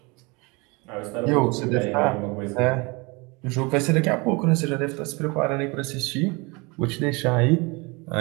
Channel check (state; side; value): quieter; left; 27.5 dB